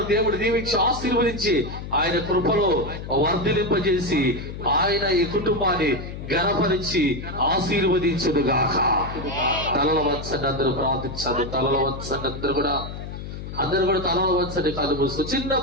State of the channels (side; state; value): left; noise; hum, 9 dB below the sound